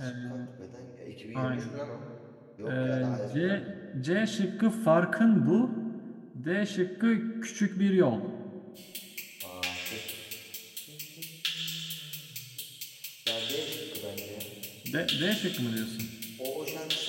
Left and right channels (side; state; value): both; identical; correlation 1.00